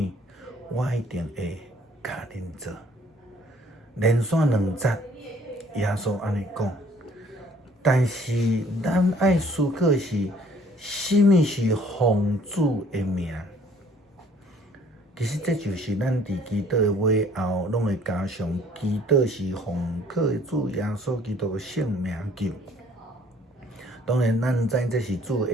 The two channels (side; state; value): both; normal; correlation 0.58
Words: 我一定会甲恁做。连续2节，耶稣安尼讲。但是咱爱思考是，甚物是奉主的名？其实这就是咱伫祈祷的尾后，拢会加上祈祷是奉靠主耶稣基督的圣名求。当然，咱知这是主